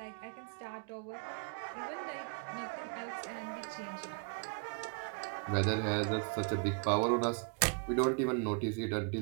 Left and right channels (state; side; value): quieter; left; 36.9 dB